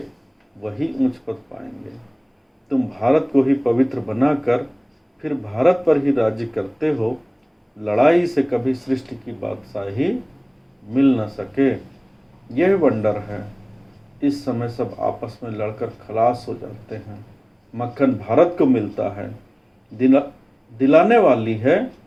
वही ऊंच पद पाएंगे। तुम भारत को ही पवित्र बनाकर फिर भारत पर ही राज्य करते हो। लड़ाई से कभी सृष्टि की बादशाही मिल न सके, यह वंडर है। इस समय सब आपस में लड़कर खलास हो जाते हैं। मक्खन भारत को मिलता है। दिलाने वाली है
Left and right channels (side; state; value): both; identical; correlation 1.00